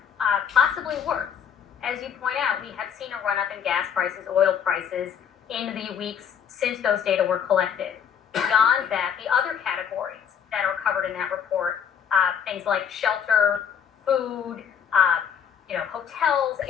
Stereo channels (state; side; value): quieter; right; 7.8 dB